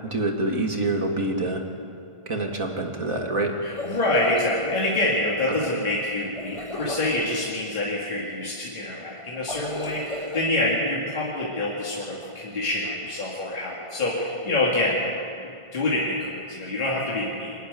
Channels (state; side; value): late; left; 1.5 ms